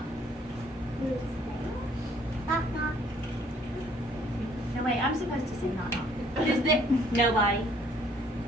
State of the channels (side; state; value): both; normal; correlation 0.61